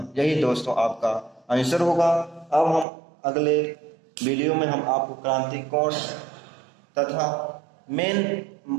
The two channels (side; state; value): left; drops out; at 2.9 s